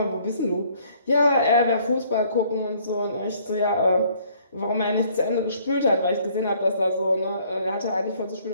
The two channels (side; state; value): both; inverted; correlation -0.61